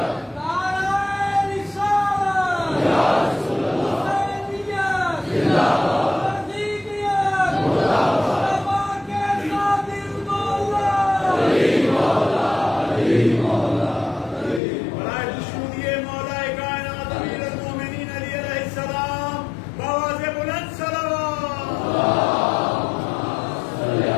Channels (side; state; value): right; drops out; at 14.6 s